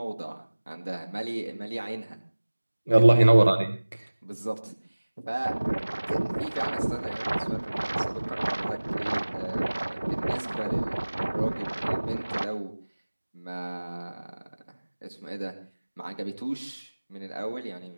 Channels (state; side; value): inverted; both; correlation -1.00